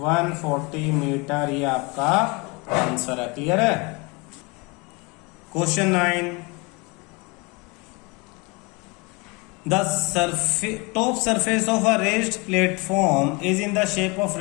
मीटर, ये आपका आंसर है। क्लियर है। Question 9, the top surface of a raised platform is in the shape of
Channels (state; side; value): quieter; right; 27.9 dB